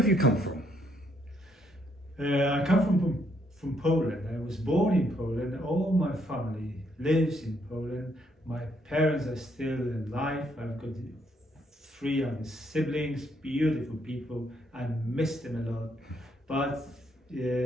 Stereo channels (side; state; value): both; normal; correlation 0.72